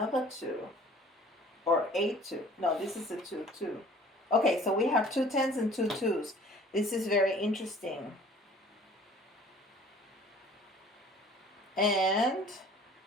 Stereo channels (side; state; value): both; normal; correlation 0.50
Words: 2, or a 2. No, this is a 2, 2. Okay, so we have 2 10s and 2 2s. This is very interesting. And